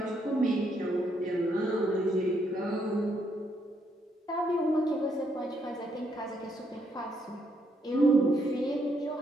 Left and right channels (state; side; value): normal; both; correlation 0.75